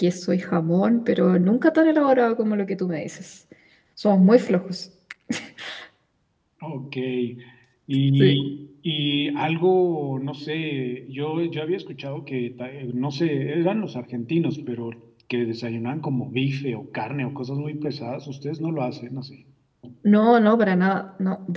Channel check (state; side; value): identical; both; correlation 1.00